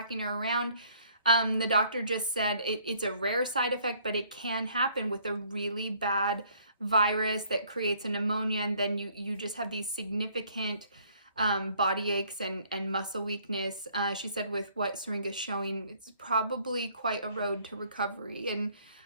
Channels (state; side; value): inverted; both; correlation -0.62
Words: her around. The doctor just said it's a rare side effect, but it can happen with a really bad virus that creates a pneumonia, and then you just have these significant body aches and muscle weakness. She said with what Syringa's showing, it's probably quite a road to recovery, and